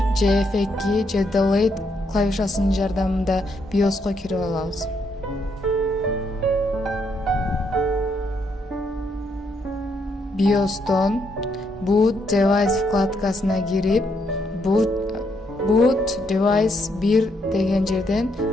же F2 же Delete клавишасынын жардамында BIOSко кирип алабыз. BIOS'тон Boot Device вкладкасына кирип, Boot Device 1 деген жерден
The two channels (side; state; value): both; normal; correlation 0.76